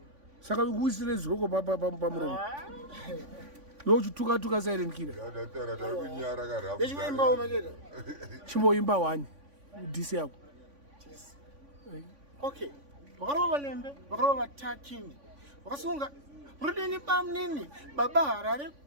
Saka ukuisire zviroko pamuromo. Yochituka silent killer. Ndechimboimba umacheta. Chimboimba 1 DC yako. Okay. Vakarova valembe, vakarova vatakini. Vakasunga Rudini bamnini Baba Harare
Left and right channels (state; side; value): late; left; 3.5 ms